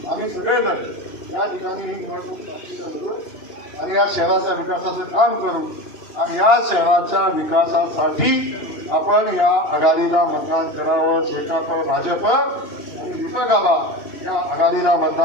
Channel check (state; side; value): late; right; 2.8 ms